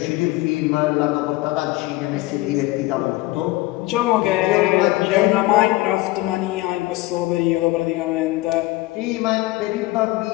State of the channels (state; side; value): quieter; right; 19.3 dB